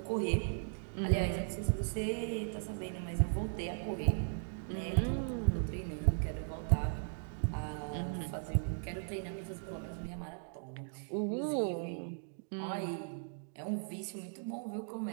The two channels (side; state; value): left; silent; digital silence